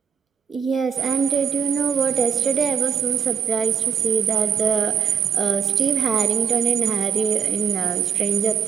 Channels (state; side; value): quieter; left; 7.1 dB